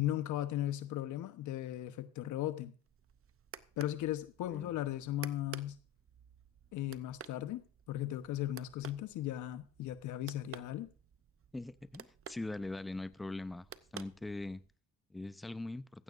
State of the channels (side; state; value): right; quieter; 8.9 dB